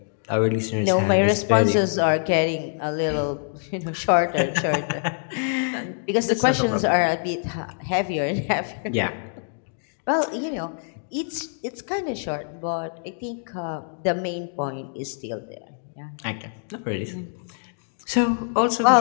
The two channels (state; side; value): silent; right; digital silence